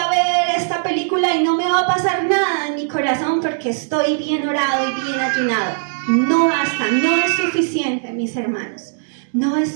ver esta película y no me va a pasar nada en mi corazón porque estoy bien orado y bien ayunado. No basta, no es suficiente, mis hermanos. No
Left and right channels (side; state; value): left; silent; digital silence